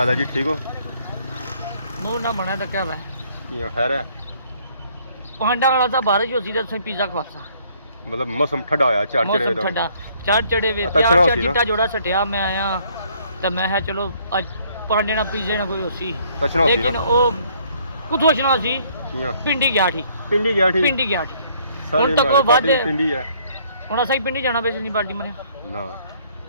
है जी ठीक हो मुंह ना बना तो क्या है खैर है पांडा वाला सा बारिश होती तो पिज्जा खवासा मतलब मौसम ठंडा होया चार चढ़े ठंडा चार चढ़े वे अच्छा चार चिट्टा जोड़ा सटिया मैं आया तो मैं है चलो अज पांडे ना पिज्जे ना कोई होसी लेकिन वो कुछ होना सी पिंडी गया थी पिंडी गया थी हुन तक वो बाद पिंडी है हुन असा पिंडी जाना बेस नहीं पार्टी मने ना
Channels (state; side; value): inverted; both; correlation -0.63